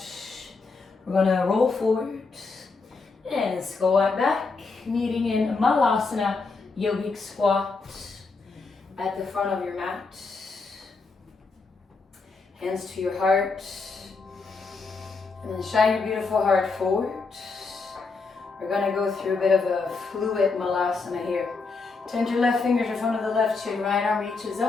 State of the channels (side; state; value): right; quieter; 4.2 dB